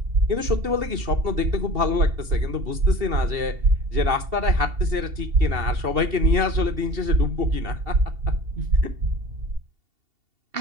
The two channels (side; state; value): left; late; 2.7 ms